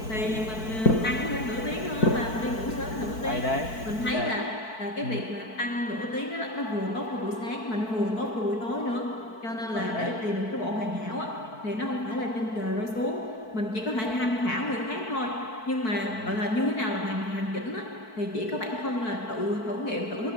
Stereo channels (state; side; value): late; right; 4.6 ms